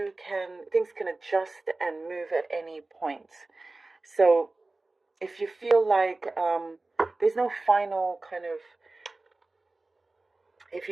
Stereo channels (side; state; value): left; quieter; 3.2 dB